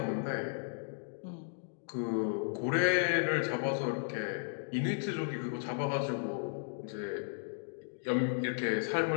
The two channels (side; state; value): right; silent; digital silence